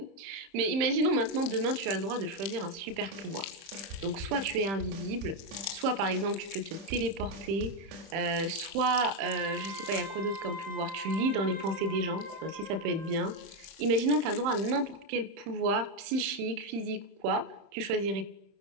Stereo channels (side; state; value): left; late; 31 ms